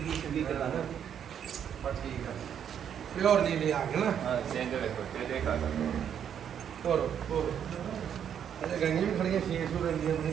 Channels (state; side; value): quieter; left; 8.7 dB